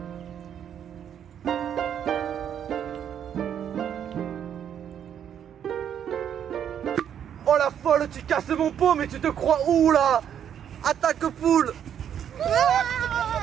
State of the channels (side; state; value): left; quieter; 9.1 dB